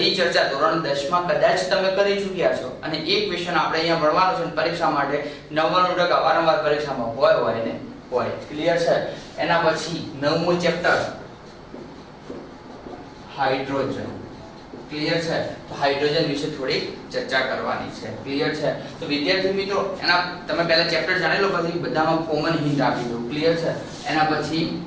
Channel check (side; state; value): both; identical; correlation 1.00